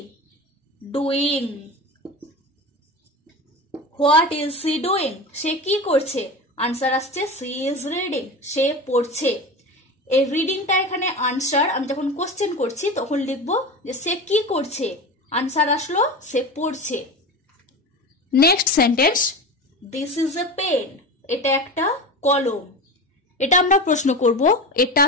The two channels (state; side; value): normal; both; correlation 0.28